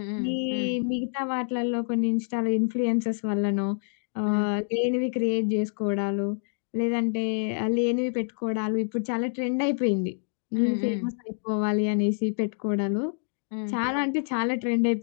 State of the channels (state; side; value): silent; right; digital silence